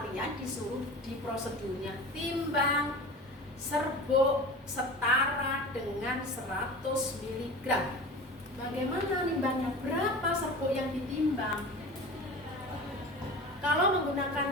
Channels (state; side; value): normal; both; correlation 0.34